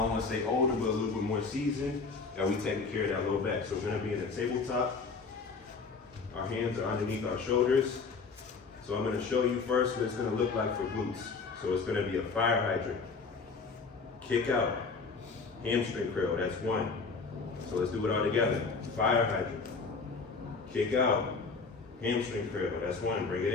want to say older, but a little bit more seasoned, that we taking care of that low back. So we're gonna be in a tabletop. Our hands are underneath our shoulders. So I'm gonna show you first what it's gonna look like for glutes. So it's gonna be a fire hydrant, kick out, hamstring curl, that's one. So let's do it all together. Fire hydrant, kick out, hamstring curl, that's one, bring it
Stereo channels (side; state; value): right; quieter; 4.6 dB